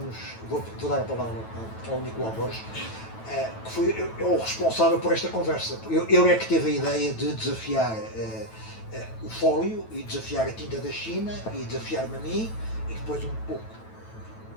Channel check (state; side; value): late; right; 9.1 ms